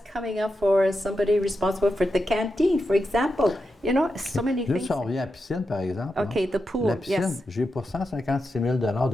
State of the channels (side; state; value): both; normal; correlation 0.88